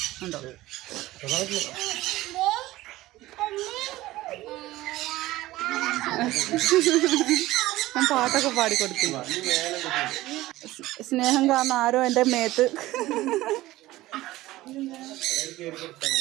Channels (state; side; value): quieter; left; 17.2 dB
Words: ഉണ്ടോ? ഞാൻ പാട്ടൊക്കെ പാടിക്കൊടുത്തു. സ്നേഹം കാരണം ആരോ എൻ്റെ മേത്ത്.